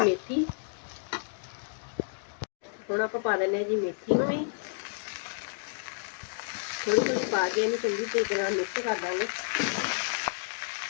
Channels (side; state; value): right; silent; digital silence